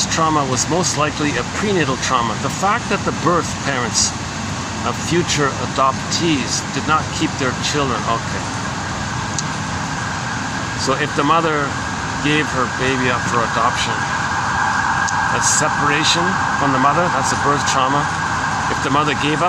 trauma was most likely a prenatal trauma. The fact that the birth parents of future adoptees did not keep their children. Okay. So if the mother gave her baby up for adoption, that's separation from the mother, that's a birth trauma. If the mother gave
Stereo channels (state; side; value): identical; both; correlation 1.00